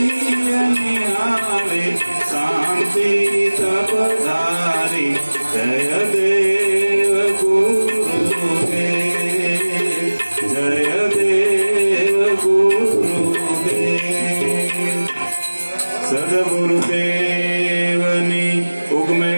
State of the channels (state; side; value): inverted; both; correlation -1.00